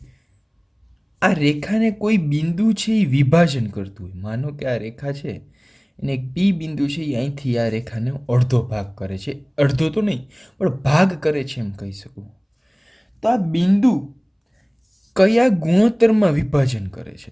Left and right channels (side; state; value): both; identical; correlation 1.00